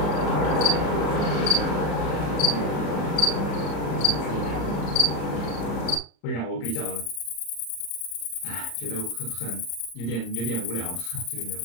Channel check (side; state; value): right; late; 34 ms